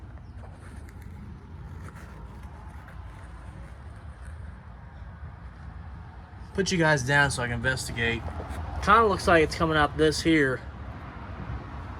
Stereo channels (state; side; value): identical; both; correlation 1.00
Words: Put you guys down so I can investigate. Kind of looks like it's coming out this here.